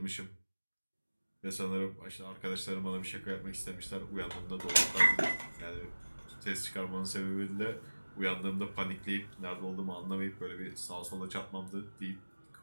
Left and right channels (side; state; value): both; inverted; correlation -1.00